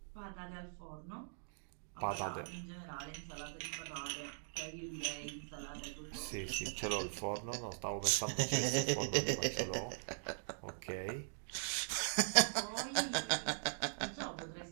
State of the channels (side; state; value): left; silent; digital silence